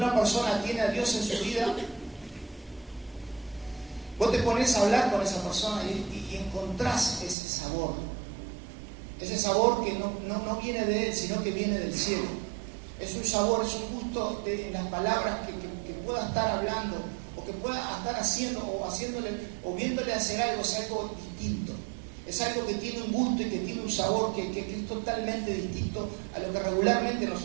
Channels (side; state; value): left; drops out; at 7.4 s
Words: persona tiene a Dios en su vida, vos te pones a hablar con esa persona y encontrás ese sabor. Ese sabor que no viene de Él, sino que viene del cielo. Es un sabor, es un gusto en las palabras que pueda estar hablando, o que pueda estar haciendo, o haciéndole, o viéndole hacer algo, es algo distinto. Es algo que tiene un gusto y que tiene un sabor que es totalmente distinto a lo que regularmente